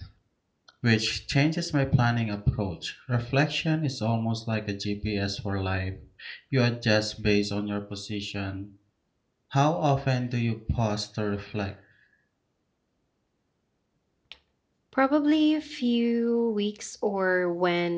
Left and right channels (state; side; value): identical; both; correlation 1.00